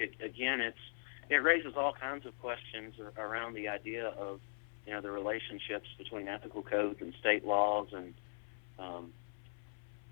raises all kinds of questions around the idea of, the relationships between ethical codes and state laws and,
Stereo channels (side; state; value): right; silent; 51 dB below the other